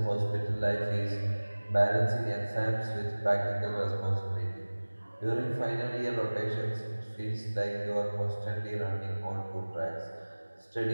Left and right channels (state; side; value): inverted; both; correlation -1.00